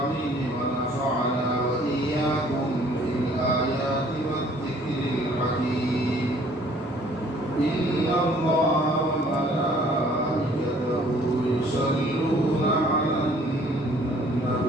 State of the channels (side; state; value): both; normal; correlation 0.57